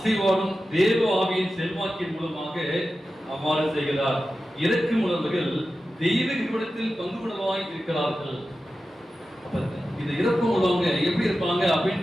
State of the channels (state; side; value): normal; both; correlation 0.93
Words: தேவ ஆவியின் செல்வாக்கின் மூலமாக அவ்வாறு செய்கிறார். இறக்கும் உணர்வுகள் தெய்வீக குணத்தில் பங்கு உணவாய் இருக்கிறார்கள். அப்ப இந்த இறக்கும் உள்ளவங்க எப்படி இருப்பாங்க அப்படின்னு